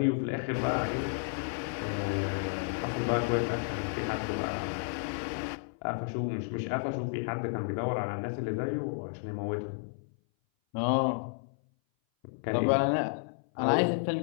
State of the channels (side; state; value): right; silent; 57 dB below the other